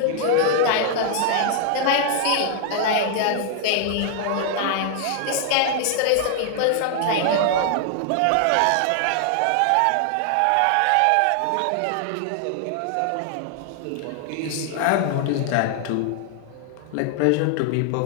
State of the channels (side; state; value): both; different; correlation 0.00